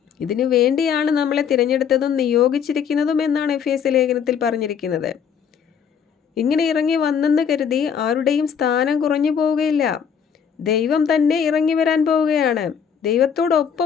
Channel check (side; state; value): right; quieter; 7.5 dB